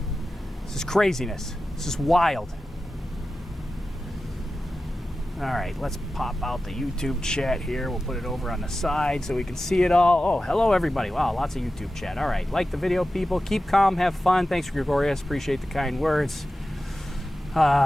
This is craziness. This is wild. All right, let's pop out the YouTube chat here. We'll put it over on the side so we can see it all. Oh, hello everybody. Wow, lots of YouTube chat. All right, like the video, people. Keep calm, have fun. Thanks, Gregorius. Appreciate the kind words.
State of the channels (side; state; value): both; normal; correlation 0.94